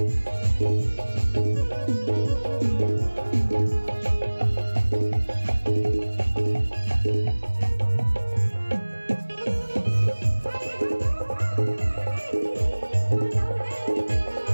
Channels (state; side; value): inverted; both; correlation -1.00